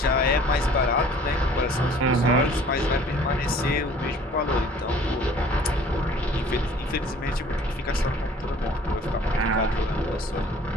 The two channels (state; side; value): normal; both; correlation 0.52